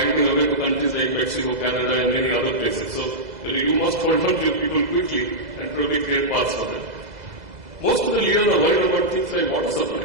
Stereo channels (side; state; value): left; late; 2.0 ms